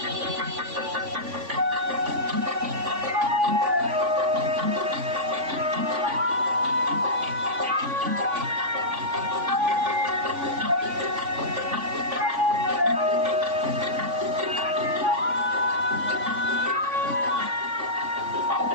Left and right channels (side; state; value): left; late; 3.5 ms